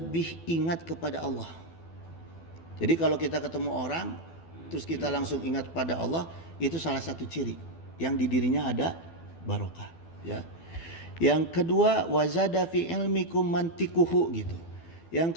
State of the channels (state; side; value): late; right; 12 ms